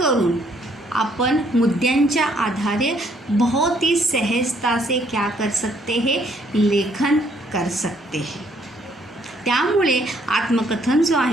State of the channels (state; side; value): normal; both; correlation 0.67